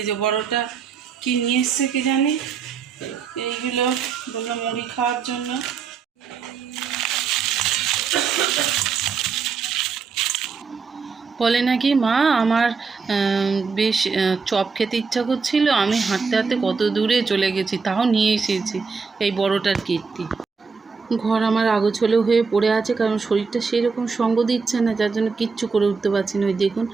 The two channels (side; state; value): left; quieter; 5.2 dB